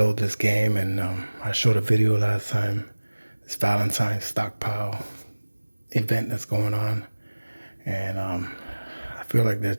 this game, and I showed a video last time, this Valentine's stockpile event that's going on, and I feel like they're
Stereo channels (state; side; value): inverted; both; correlation -1.00